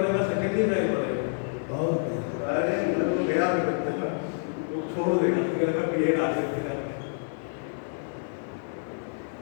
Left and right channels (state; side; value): silent; right; digital silence